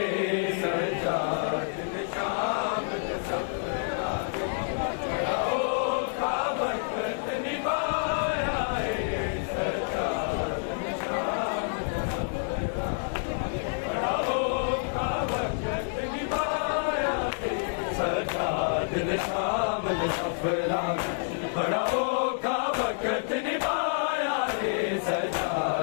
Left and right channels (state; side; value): silent; right; digital silence